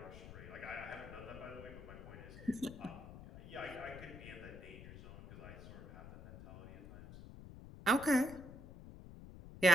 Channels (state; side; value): noise; left; rumble, 13 dB below the sound